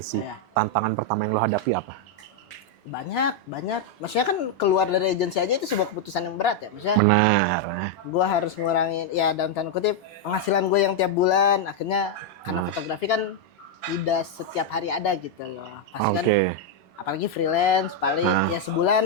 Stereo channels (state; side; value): normal; both; correlation 0.00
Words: Tantangan pertama yang lo hadapi apa? Banyak. Maksudnya kan keluar dari agensi aja itu sebuah keputusan yang berat ya. Maksudnya benar. Gue harus ngurangin ya dalam tanda kutip penghasilan gue yang tiap bulan. Akhirnya karena fotografi kan tidak setiap hari ada gitu loh. Pasti kan apalagi freelance paling ya